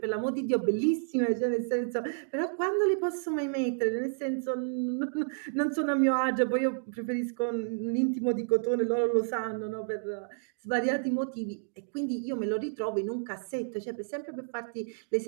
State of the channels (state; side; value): silent; left; digital silence